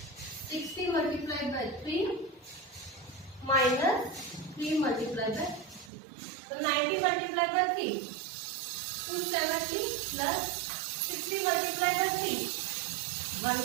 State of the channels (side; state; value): left; drops out; at 5.9 s